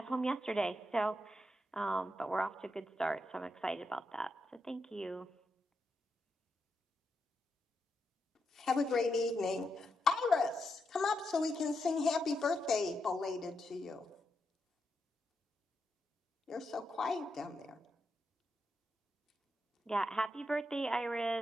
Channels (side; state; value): both; normal; correlation 0.84